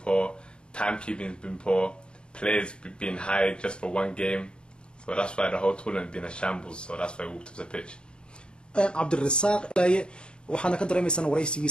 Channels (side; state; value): right; late; 0.052 ms